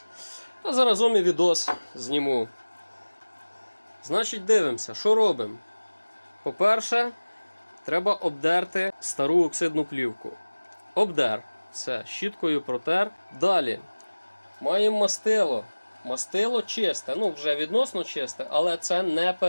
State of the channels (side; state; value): both; inverted; correlation -1.00